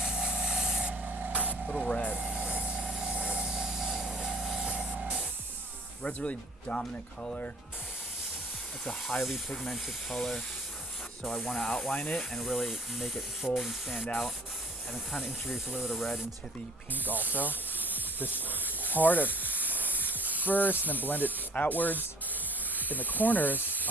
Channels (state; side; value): normal; both; correlation 0.52